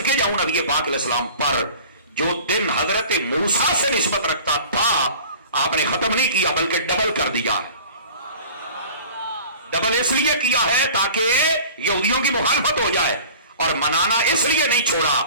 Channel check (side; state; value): both; inverted; correlation -0.43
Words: جاؤں نبی پاک علیہ السلام پر جو دن حضرت موسیٰ سے نسبت رکھتا تھا آپ نے ختم نہیں کیا بلکہ ڈبل کر دیا. ڈبل اس لیے کیا ہے تاکہ یہودیوں کی مخالفت ہو جائے، اور منانا اس لیے نہیں چھوڑا.